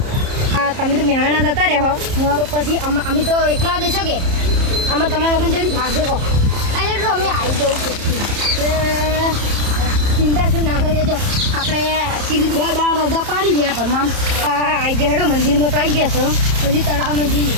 હા તમે તો મહેમાણા જતા રહો તો પછી અમે તો એકલા દેશો કે આમાં તમારા વગર જડી ભાષે કહો એટલે તો અમે આવી જવું ચિંતા શું ના કરી દેજો આપણે સીધી 2 દાડા રજા પાડી ગયા પણ આવી ગયા હેડો મંદિરમાં તો આવી ગયા છો હજી તળાવમાં જઈએ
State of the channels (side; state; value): left; late; 30 ms